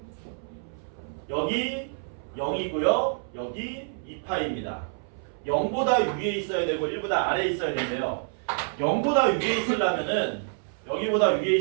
여기 0이고요. 여기 2파입니다. 0보다 위에 있어야 되고 1보다 아래에 있어야 되는데요. 0보다 위에 있으려면은 여기보다 위에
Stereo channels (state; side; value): silent; left; 60 dB below the other